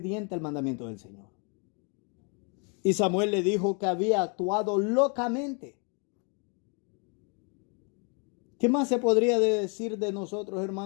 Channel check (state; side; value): quieter; right; 36.7 dB